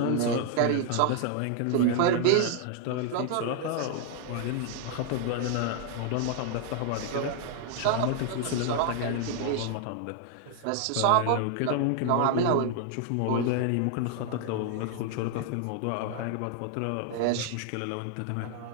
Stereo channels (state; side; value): different; both; correlation 0.00